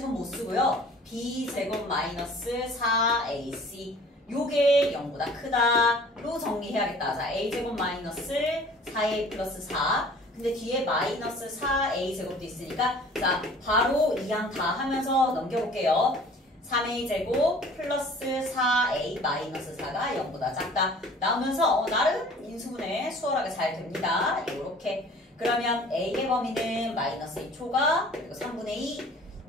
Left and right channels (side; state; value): both; normal; correlation 0.49